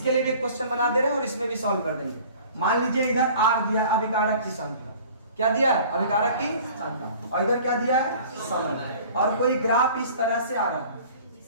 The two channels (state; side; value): inverted; both; correlation -0.47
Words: लिए भी एक क्वेश्चन बना दे रहे हैं और इसमें भी सॉल्व कर देंगे। मान लीजिए इधर R दिया अभिकारक की सांद्रता, क्या दिया है, अभिकारक की सांद्रता, और इधर क्या दिया है, समय, और कोई ग्राफ इस तरह से आ रहा है।